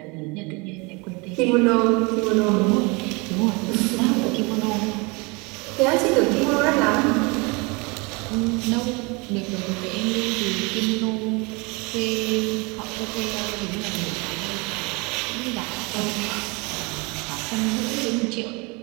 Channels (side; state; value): left; quieter; 28.2 dB